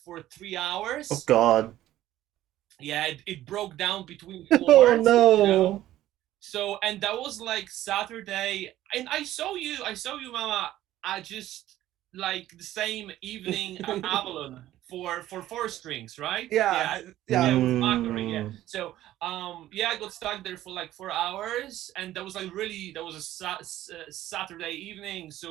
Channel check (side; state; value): left; quieter; 14.1 dB